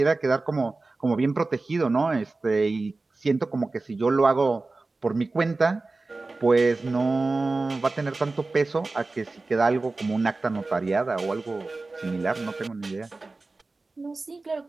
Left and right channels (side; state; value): left; quieter; 3.5 dB